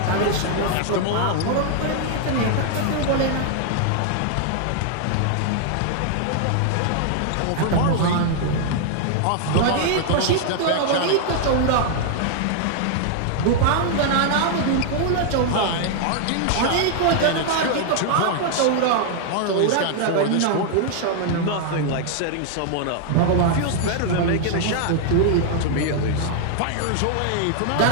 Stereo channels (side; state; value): both; different; correlation 0.00